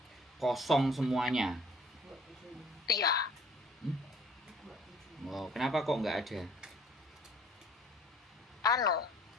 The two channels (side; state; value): both; normal; correlation 0.54